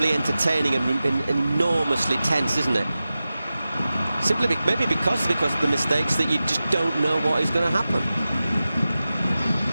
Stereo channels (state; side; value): inverted; both; correlation -0.95